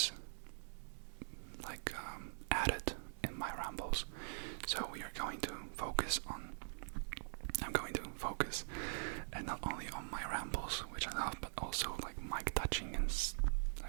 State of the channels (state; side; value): silent; left; digital silence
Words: like added in my rambles. So we are going to focus on and not only on my rambles, which I love, but also like mic touching and